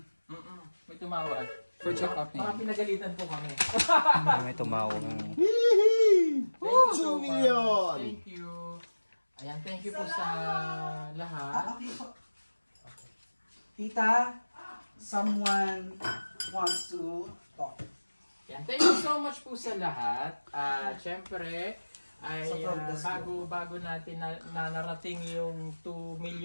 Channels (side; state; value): both; inverted; correlation -1.00